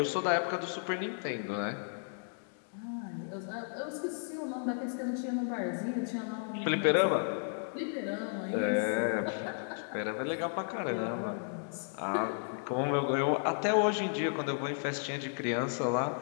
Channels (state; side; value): silent; right; digital silence